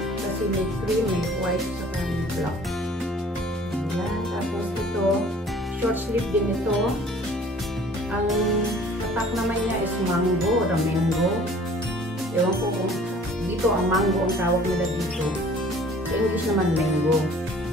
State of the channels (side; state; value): both; normal; correlation 0.51